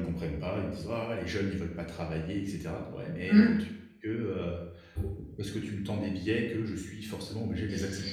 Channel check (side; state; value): both; identical; correlation 1.00